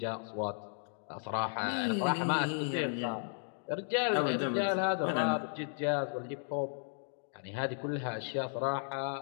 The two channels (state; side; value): silent; right; digital silence